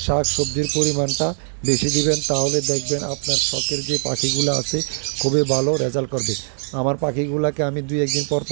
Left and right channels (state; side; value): silent; left; 65 dB below the other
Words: শাক সবজির পরিমাণটা বেশি দিবেন, তাহলে দেখবেন আপনার শখের যে পাখিগুলো আছে খুবই ভালো রেজাল্ট করবে। আমার পাখিগুলাকে আমি 2-1 দিন পর